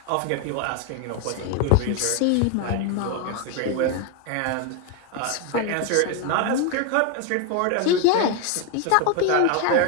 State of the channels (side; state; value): both; different; correlation 0.01